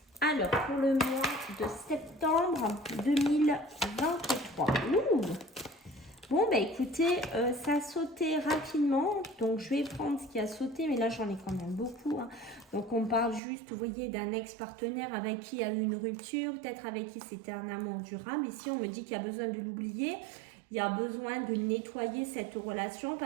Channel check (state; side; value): drops out; left; at 13.4 s